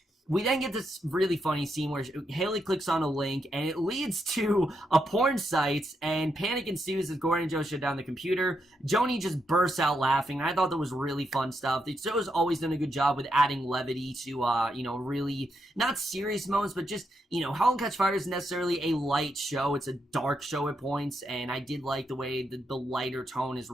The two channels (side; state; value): both; normal; correlation 0.81